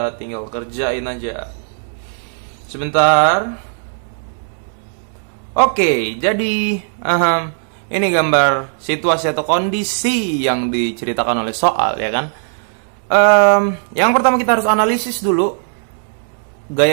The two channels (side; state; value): left; silent; digital silence